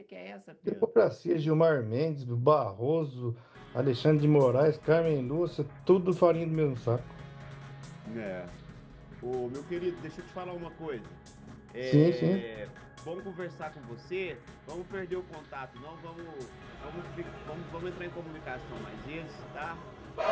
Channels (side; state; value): both; identical; correlation 1.00